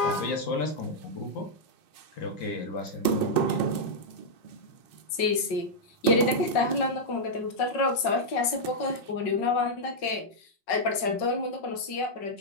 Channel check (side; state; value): right; late; 5.4 ms